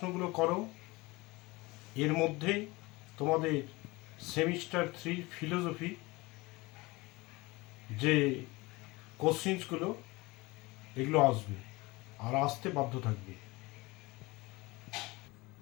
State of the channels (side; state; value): right; quieter; 22.8 dB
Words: করো। এর মধ্যে তোমাদের সেমিস্টার 3 ফিলোসফি যে কোশ্চেন্সগুলো এগুলো আসবে আর আসতে বাধ্য থাকবে।